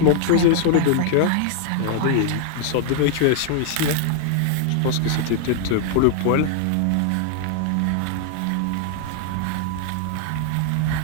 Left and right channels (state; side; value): different; both; correlation 0.00